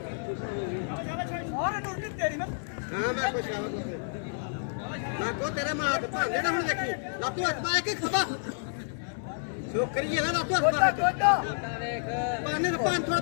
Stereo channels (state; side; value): silent; right; 58 dB below the other